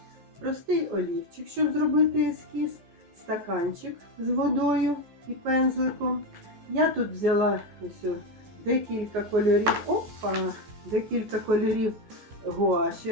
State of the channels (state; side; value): late; left; 14 ms